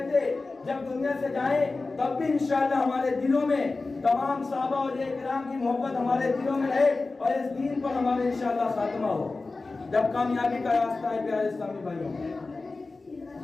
جب دنیا سے جائیں تب بھی انشاءاللہ ہمارے دلوں میں تمام صحابہ اور کرام کی محبت ہمارے دلوں میں رہے اور اس دین پر ہمارے انشاءاللہ خاتمہ ہو. جب کامیابی کا راستہ ہے پیارے اسلامی بھائیوں.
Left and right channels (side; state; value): right; quieter; 3.6 dB